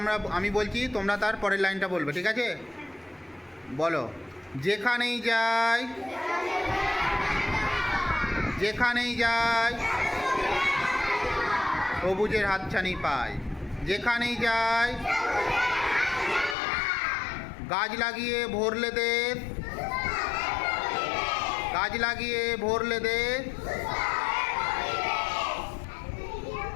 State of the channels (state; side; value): drops out; right; at 16.6 s